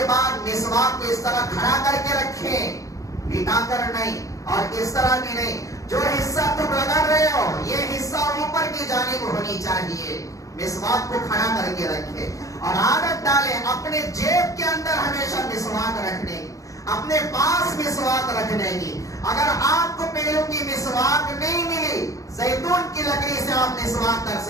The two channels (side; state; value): right; late; 0.16 ms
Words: بعد مسواک کو اس طرح کھڑا کر کے رکھیں, لٹا کر نہیں اور اس طرح بھی نہیں. جو حصہ تم رگڑ رہے ہو یہ حصہ اوپر کی جانب ہونی چاہیے مسواک کو کھڑا کر کے رکھے اور عادت ڈالے اپنے جیب کے اندر ہمیشہ مسواک رکھنے کی، اپنے پاس مسواک رکھنے کی۔ اگر آپ کو پیروں کی مسواک نہیں ملی، زیتون کی لکڑی سے آپ مسواک کر